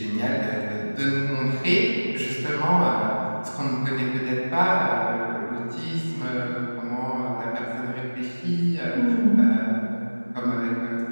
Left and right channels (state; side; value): inverted; both; correlation -1.00